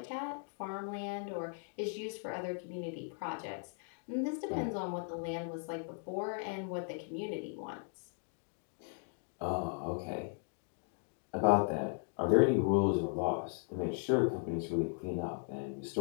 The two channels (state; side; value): silent; right; 53 dB below the other